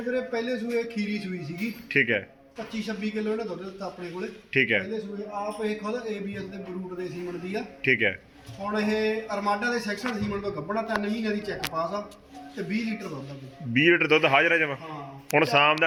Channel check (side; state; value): both; identical; correlation 1.00